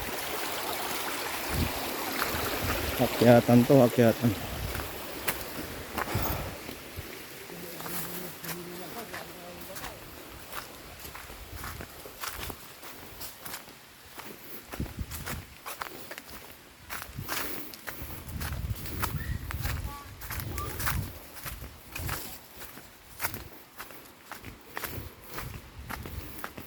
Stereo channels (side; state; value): both; identical; correlation 1.00